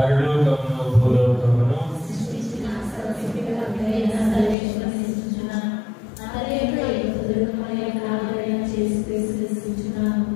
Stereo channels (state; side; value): drops out; right; at 4.5 s